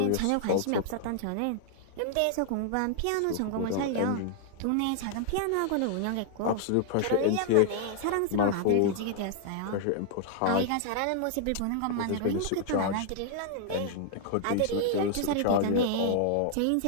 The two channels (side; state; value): both; different; correlation 0.00